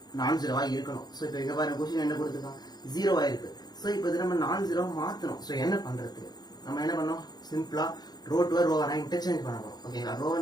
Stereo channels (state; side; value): late; right; 0.20 ms